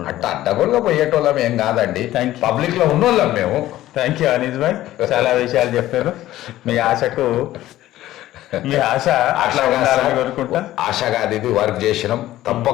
అడ్డగోలుగా పోయేటోళ్ళం ఏం కాదండి, పబ్లిక్ లో ఉన్నోళ్ళం మేము. థ్యాంక్ యూ అనీస్ భాయ్, చాలా విషయాలు చెప్పారు. మీ ఆశ అట్లా ఉండాలని కోరుకుంటా. ఆశ కాదు, ఇది వర్క్ చేసినాం.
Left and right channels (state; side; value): quieter; right; 14.7 dB